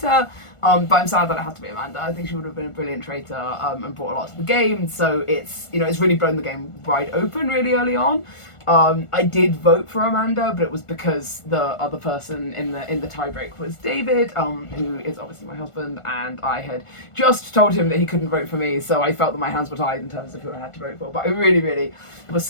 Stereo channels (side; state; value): right; late; 1.4 ms